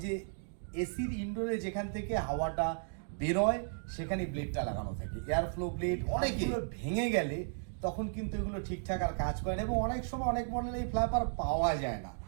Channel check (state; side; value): silent; left; digital silence